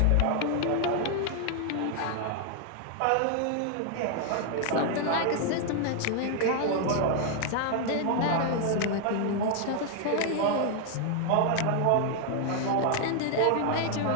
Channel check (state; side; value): different; both; correlation 0.00